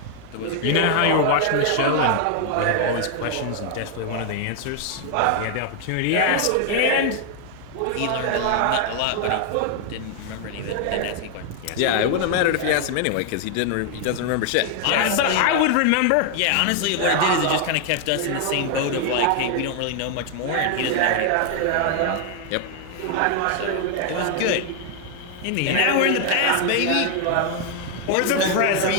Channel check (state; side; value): different; both; correlation 0.00